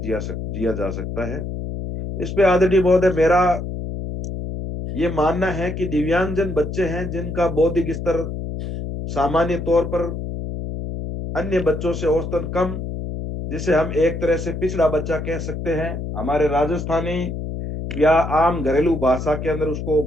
जा सकता है। इस पे आदरणीय महोदय, मेरा ये मानना है कि दिव्यांगजन बच्चे हैं जिनका बौद्धिक स्तर सामान्य तौर पर अन्य बच्चों से औसतन कम, जिसे हम एक तरह से पिछड़ा बच्चा कह सकते हैं, हमारे राजस्थानी या आम घरेलू भाषा के अंदर उसको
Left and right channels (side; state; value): left; noise; hum, 5 dB below the sound